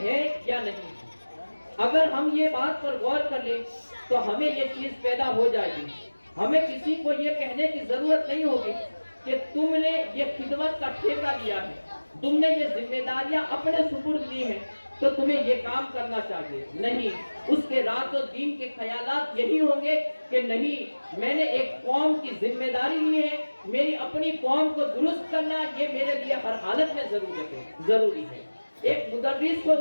या नहीं। अगर हम ये बात पर गौर कर लें तो हमें ये चीज पैदा हो जाएगी। हमें किसी को ये कहने की जरूरत नहीं होगी कि तुमने ये खिदमत का ठेका लिया है, तुमने ये जिम्मेदारियां अपने सुपुर्द ली हैं तो तुम्हें ये काम करना चाहिए। नहीं, उसके रातों दिन के ख्यालात यही होंगे कि नहीं, मैंने एक कौम की जिम्मेदारी ली है, मेरी अपनी कौम को दुरुस्त करना ये मेरे लिए हर हालत में जरूरी है। एक मुदर्रिस को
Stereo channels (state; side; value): inverted; both; correlation -1.00